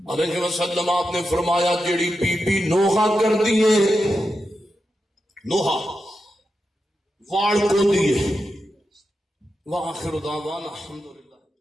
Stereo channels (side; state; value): both; normal; correlation 0.88